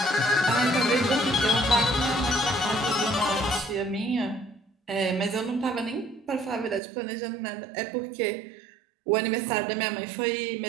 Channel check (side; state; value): left; drops out; at 6.8 s